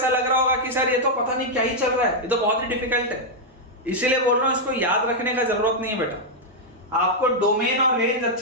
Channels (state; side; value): normal; both; correlation -0.03